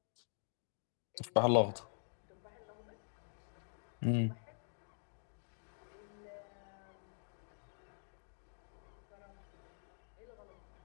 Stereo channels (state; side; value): silent; right; digital silence